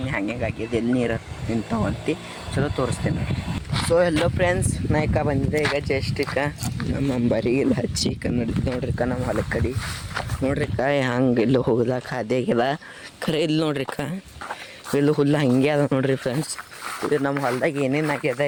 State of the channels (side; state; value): both; identical; correlation 1.00